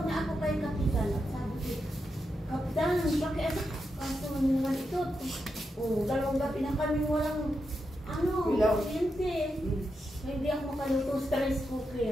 na ako kay Kapitan. Sabi ko, Kapitan, pakiano? Kaso naman ito. Dalawang gabi na kami walang ano, Ilaw. kuryente. Hindi ako makaluto stress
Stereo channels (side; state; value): both; normal; correlation 0.86